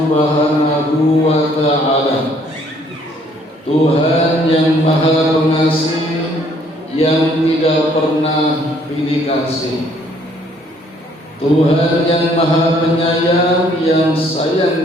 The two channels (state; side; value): normal; both; correlation 0.63